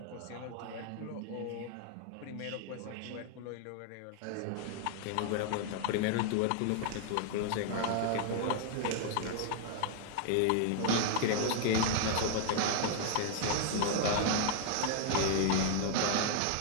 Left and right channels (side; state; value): both; different; correlation 0.00